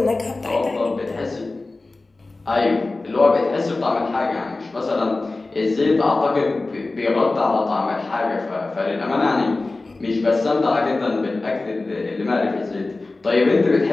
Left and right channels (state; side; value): quieter; right; 3.3 dB